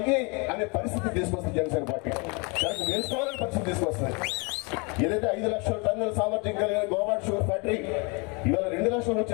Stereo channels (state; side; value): quieter; right; 31.0 dB